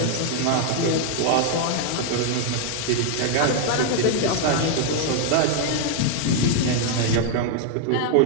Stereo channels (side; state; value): both; different; correlation 0.00